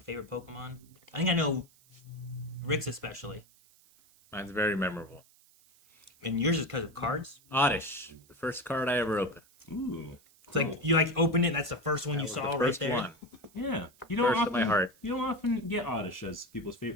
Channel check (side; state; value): right; noise; hiss, 29 dB below the sound